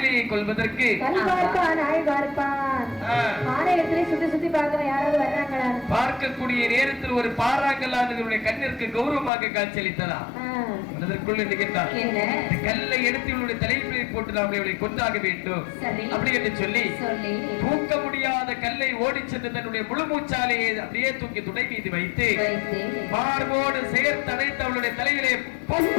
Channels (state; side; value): drops out; right; at 9.3 s